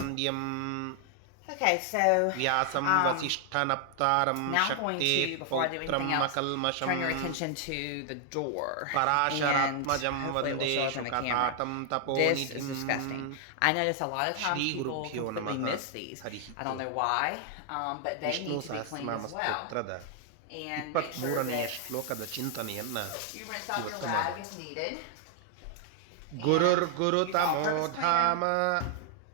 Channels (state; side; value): different; both; correlation 0.00